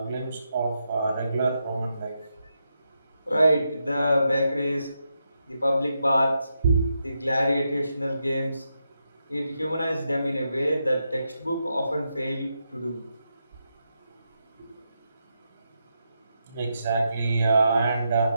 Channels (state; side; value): inverted; both; correlation -0.84